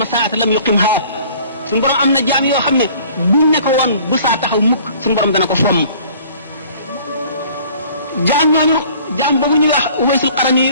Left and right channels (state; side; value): inverted; both; correlation -0.52